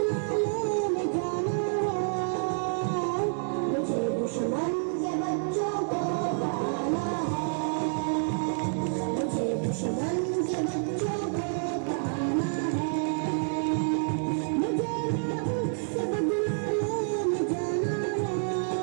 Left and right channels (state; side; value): silent; left; 59 dB below the other